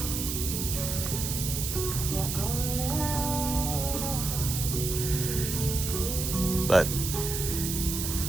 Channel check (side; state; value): right; noise; hiss, 3 dB below the sound